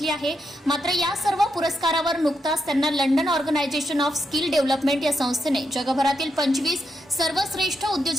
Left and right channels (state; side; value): normal; both; correlation 0.82